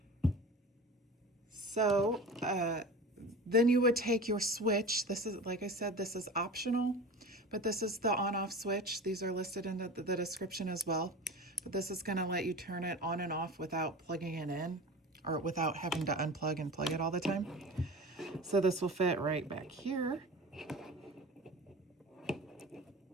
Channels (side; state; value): both; normal; correlation 0.34